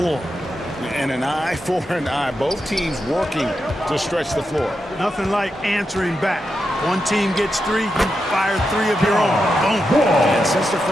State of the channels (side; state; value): both; normal; correlation 0.87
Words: And an eye for an eye. Both teams working to stretch the floor. Nothing like answering back. One team gets 3, you fire 3 of your own. Boom. And since the